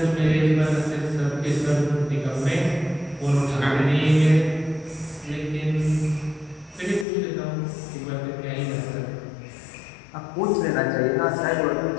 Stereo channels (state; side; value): drops out; right; at 7.1 s